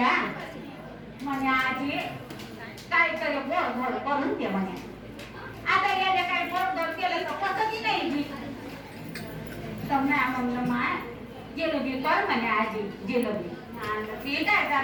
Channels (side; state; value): both; identical; correlation 1.00